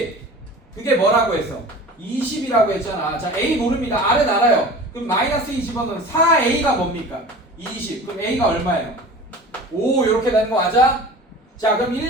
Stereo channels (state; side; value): normal; both; correlation 0.39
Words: 그게 뭐라고 했어? 20이라고 했잖아. 자, A 모릅니다. R은 알아요. 그럼 마이너스 20은 4A가 뭡니까? 20. 그럼 A가 얼마예요? 5 이렇게 되는 거 맞아? 자, 그럼